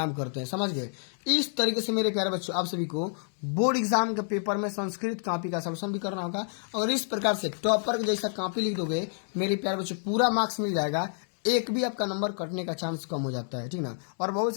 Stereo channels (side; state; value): right; silent; digital silence